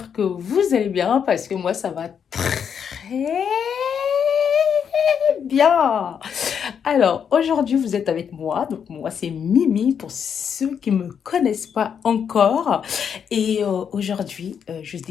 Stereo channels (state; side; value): quieter; right; 7.5 dB